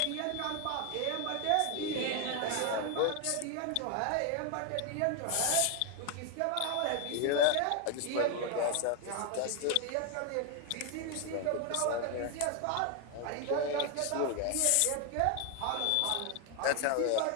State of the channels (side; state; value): both; different; correlation 0.01